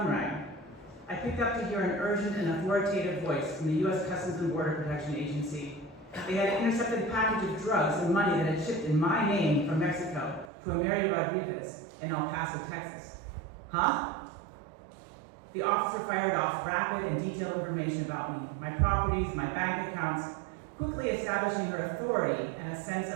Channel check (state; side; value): drops out; left; at 10.5 s